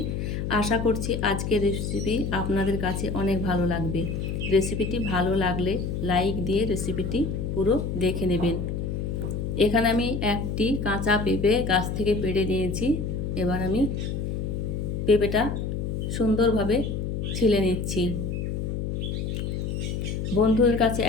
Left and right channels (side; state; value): left; noise; hum, 2 dB below the sound